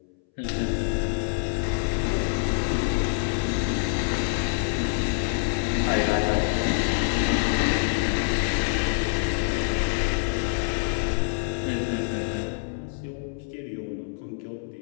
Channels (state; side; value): silent; right; 61 dB below the other